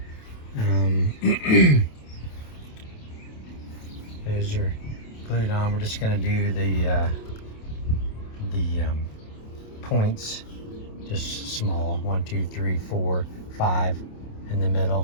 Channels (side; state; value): right; late; 28 ms